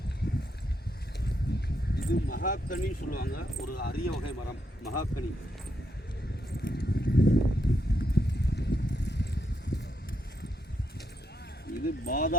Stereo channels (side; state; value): both; normal; correlation 0.79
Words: இது மகாக்கனி சொல்லுவாங்க, ஒரு அரிய வகை மரம் மகாக்கனி. இது